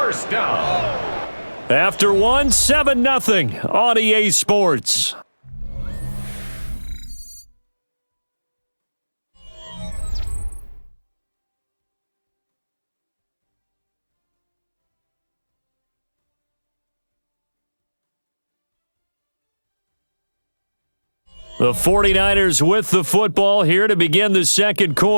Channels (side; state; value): both; inverted; correlation -1.00